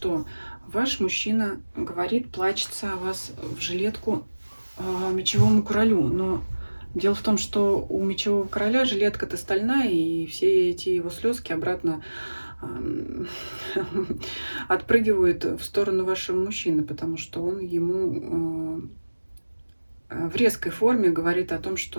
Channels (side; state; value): both; inverted; correlation -1.00